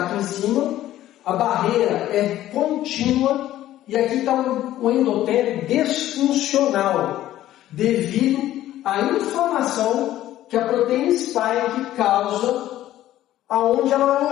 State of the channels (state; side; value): quieter; right; 13.6 dB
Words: aqui em cima, a barreira é contínua e aqui está o endotélio disfuncional, devido à inflamação que a proteína spike causa aonde ela